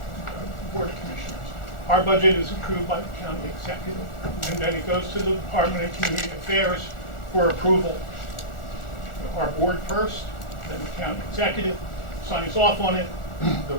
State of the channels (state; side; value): late; right; 1.4 ms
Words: Commissioners. Our budget is approved by the county executive, and then it goes to the Department of Community Affairs for approval. Our board first, then the county executive signs off on it. The